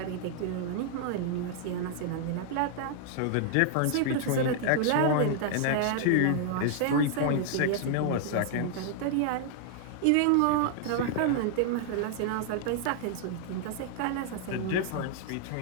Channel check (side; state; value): both; different; correlation 0.00